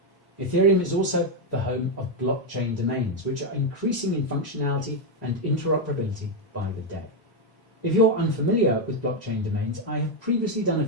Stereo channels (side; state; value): both; normal; correlation 0.03